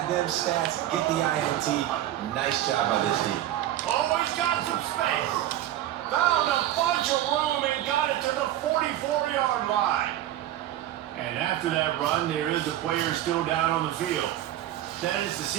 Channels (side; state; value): left; quieter; 13.1 dB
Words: them stats, get the INT. Nice job by this D. Always got some space. Found a bunch of room and got it to the 44-yard line. And after that run, there is a player still down on the field. That is the